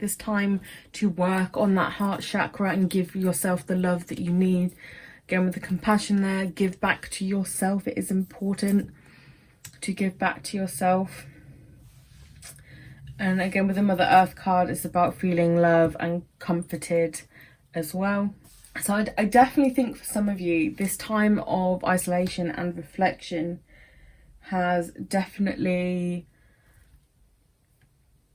this time to work on that heart chakra and give yourself the love that you need. Again, with the compassion there, give back to yourself. It is important to give back to yourself. And again, with the Mother Earth card, it's about feeling love and comforted as well. So I definitely think for some of you, this time of isolation and reflection has definitely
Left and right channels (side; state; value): both; identical; correlation 1.00